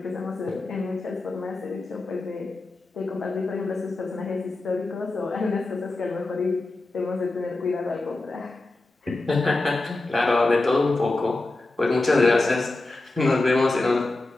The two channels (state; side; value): quieter; right; 3.0 dB